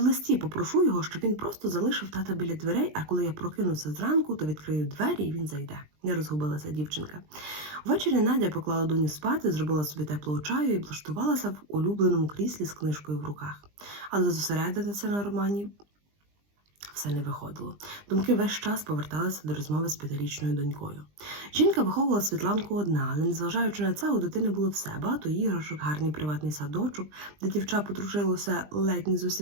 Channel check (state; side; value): late; left; 20 ms